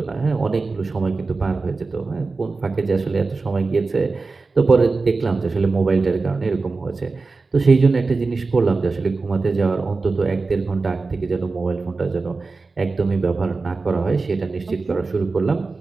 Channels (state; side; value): quieter; left; 3.9 dB